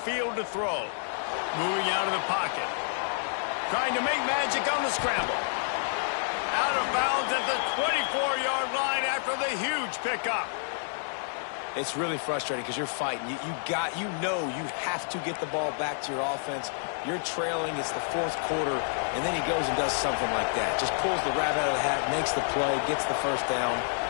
to throw. Moving out of the pocket. Trying to make magic on the scramble. Out of bounds at the 24-yard line after the huge pickup. It's really frustrating because you're fighting. You have to get the ball back to your offense. You're trailing. It's the fourth quarter, and then he goes and does something like that. Just pulls the rabbit out of the hat, makes the play, gets the first down.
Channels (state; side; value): silent; right; digital silence